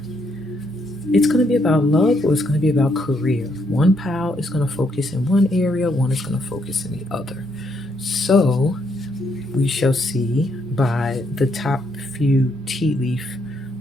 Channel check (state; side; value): normal; both; correlation 0.74